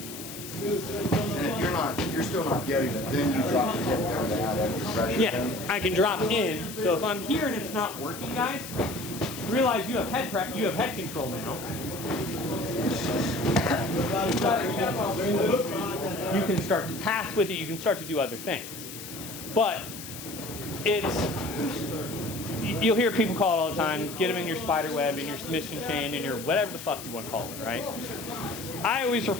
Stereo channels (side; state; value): left; noise; hiss, 11 dB below the sound